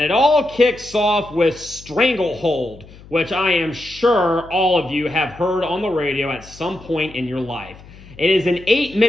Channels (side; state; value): left; noise; hum, 21 dB below the sound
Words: it all kicks off with Stranglehold, which I am sure all of you have heard on the radio at some point in your life. It is an